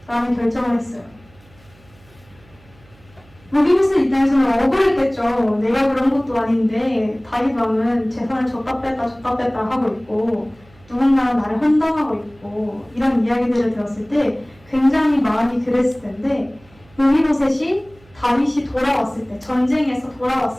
라는 결정을 했어요. 느비보셋 입장에서는 억울했겠죠. 내가 그런 것도 아닌데 다윗 왕은 재산을 줬다 뺐다 하고 있고 누군가는 나를 헌당하고 있고 이런 이야기들을 들었을 때 굉장히 마음이 그랬을 텐데 느비보셋이 다윗이 돌아왔을 때, 전쟁에서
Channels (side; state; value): right; noise; hum, 28 dB below the sound